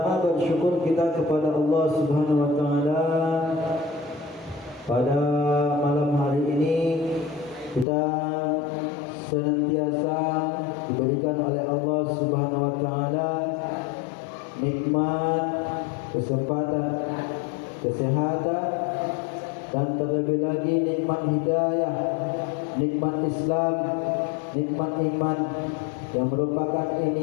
bersyukur kita kepada Allah Subhanahu wa taala. Pada malam hari ini kita senantiasa diberikan oleh Allah Subhanahu wa taala nikmat, kesempatan, kesehatan, dan terlebih lagi nikmat hidayah, nikmat Islam, nikmat iman, yang merupakan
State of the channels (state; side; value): drops out; right; at 7.9 s